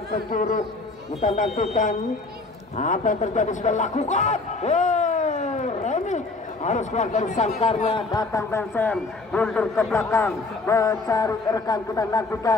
penjuru. Kita nantikan apa yang terjadi sudah lakukan. Remy harus keluar dari sangkarnya, datang Benson mundur ke belakang mencari rekan. Kita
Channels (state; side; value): quieter; right; 3.4 dB